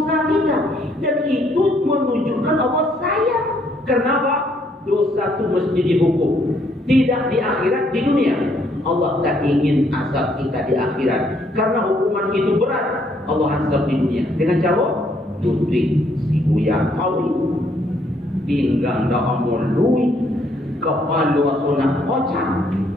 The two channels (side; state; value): both; normal; correlation 0.69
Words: kita, dan itu menunjukkan Allah sayang. Kenapa? Dosa itu mesti dihukum, tidak di akhirat, di dunia. Allah tak ingin azab kita di akhirat, karena hukuman itu berat. Allah azab di dunia dengan cara Ludwig si Buya Kawi pinggang dah amul lui kepala sunat kocak,